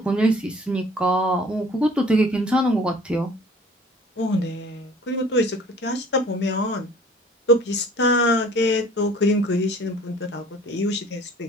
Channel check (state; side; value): normal; both; correlation 0.50